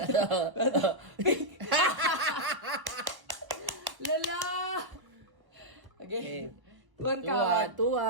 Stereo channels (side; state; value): left; late; 1.0 ms